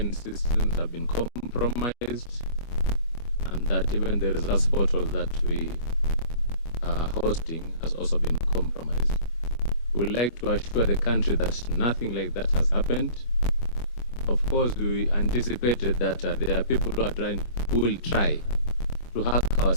systems have been compromised and that even the results portal that we are hosting has also been compromised. We would like to assure the country that nothing like that has happened. Of course, we anticipated that there are people who will try to hack our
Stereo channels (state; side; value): late; right; 25 ms